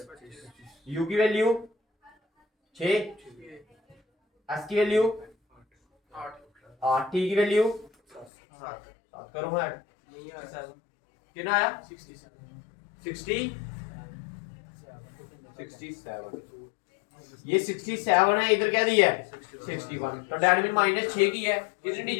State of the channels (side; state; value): right; drops out; at 8.3 s